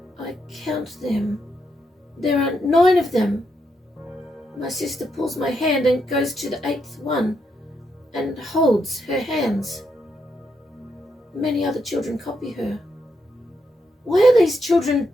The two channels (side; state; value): both; normal; correlation 0.80